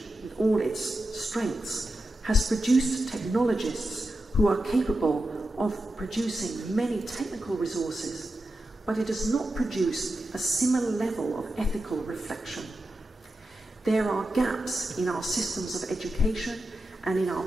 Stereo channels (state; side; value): normal; both; correlation 0.90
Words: with all its strengths, has produced technologists who are capable of producing many technical resources, but it has not produced a similar level of ethical reflection. There are gaps in our systems of education and in our